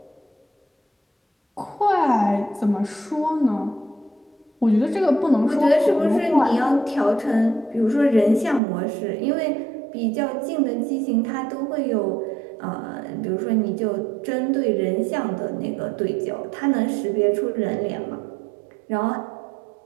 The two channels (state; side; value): drops out; left; at 8.6 s